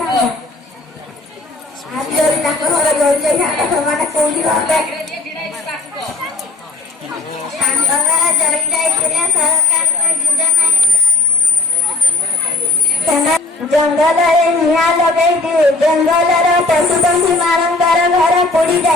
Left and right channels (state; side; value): quieter; right; 3.1 dB